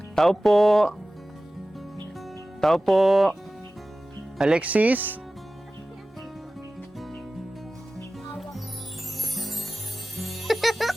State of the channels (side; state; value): both; normal; correlation 0.96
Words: Tao po. Tao po. Alexis?